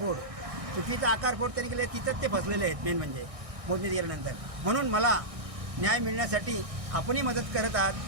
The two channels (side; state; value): left; late; 1.6 ms